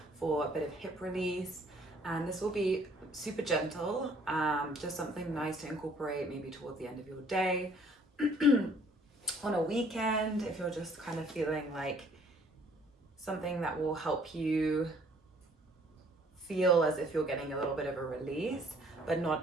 for a bit of hip release. And this will be super gentle, just something nice to incorporate maybe towards the end of your day, on a weekend, if you're just kind of feeling like something that will help you feel as if you're getting a little bit of a release, but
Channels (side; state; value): both; normal; correlation 0.59